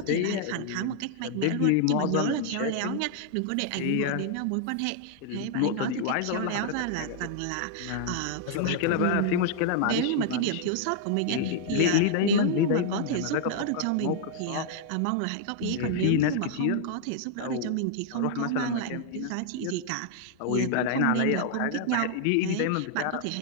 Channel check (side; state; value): both; different; correlation -0.01